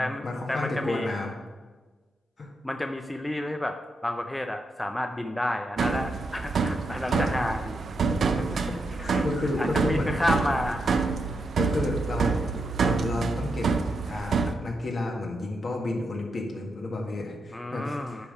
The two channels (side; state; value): both; normal; correlation 0.83